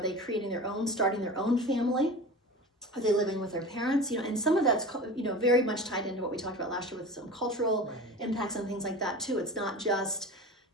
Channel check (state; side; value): normal; both; correlation 0.33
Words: creating their own, starting their own family? Are they living with their parents? And some of that's, very much tied into what we talked about last year with some cultural impacts and things like that too. It's not just,